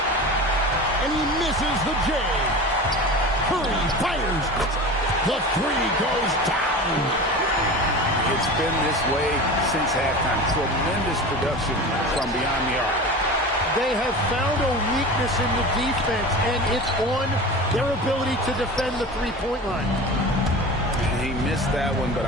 And he misses the J. Curry fires. The three goes down. It's been this way since halftime. Tremendous production from beyond the arc. They have found a weakness in the defense, and it's on their ability to defend the three-point line. He missed that one, but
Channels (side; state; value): both; normal; correlation 0.32